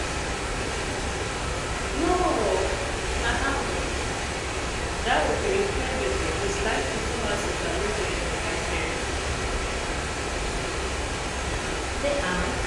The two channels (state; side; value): identical; both; correlation 1.00